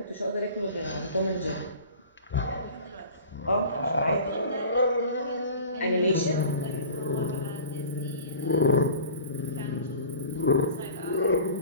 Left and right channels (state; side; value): inverted; both; correlation -0.41